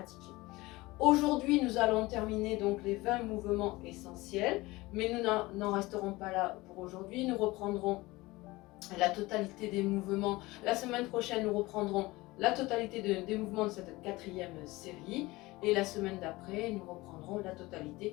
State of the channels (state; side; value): quieter; right; 20.8 dB